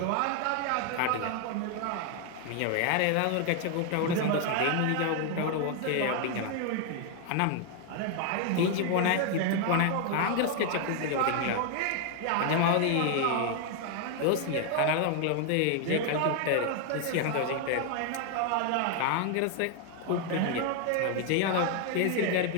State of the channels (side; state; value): both; different; correlation 0.00